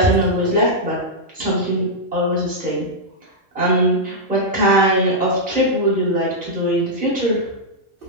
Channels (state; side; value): normal; both; correlation -0.07